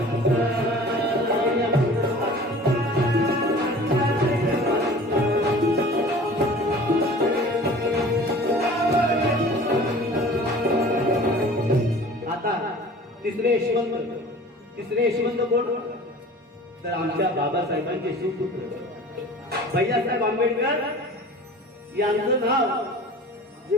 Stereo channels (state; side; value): normal; both; correlation 0.43